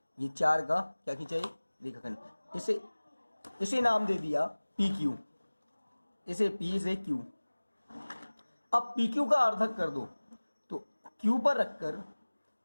ये 4 का क्या खींचा, एक रेखाखंड। इसे नाम दे दिया PQ, इसे P, इसे Q। अब PQ का अर्धक कर दो, तो Q पर रखकर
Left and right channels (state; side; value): inverted; both; correlation -1.00